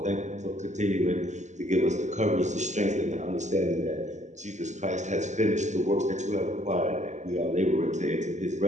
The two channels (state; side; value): late; left; 0.34 ms